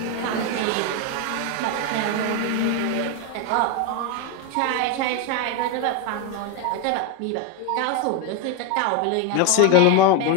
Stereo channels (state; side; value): different; both; correlation 0.02